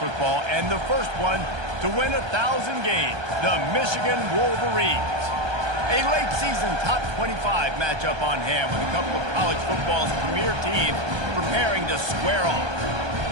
and the first one to win 1,000 games, the Michigan Wolverines. A late-season top 25 matchup on hand with a couple of college football's premier teams preparing to square off.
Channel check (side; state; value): left; late; 1.3 ms